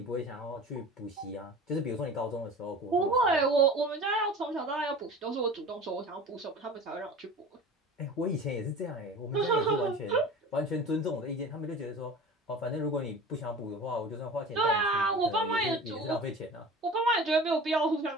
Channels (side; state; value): both; normal; correlation 0.38